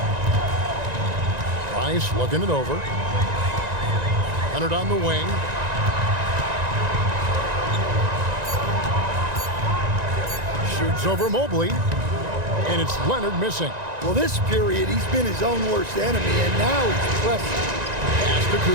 Price looking it over. Leonard on the wing. Shoots over Mobley. And it's Leonard missing. Well, this period, he's been his own worst enemy, and now he's pressing. Pass to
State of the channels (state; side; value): late; left; 1.9 ms